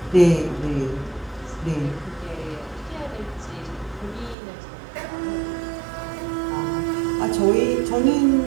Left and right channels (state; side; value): drops out; left; at 4.4 s